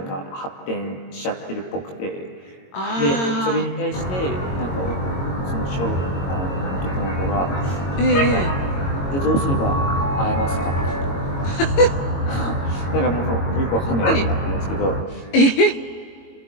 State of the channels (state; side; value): late; right; 22 ms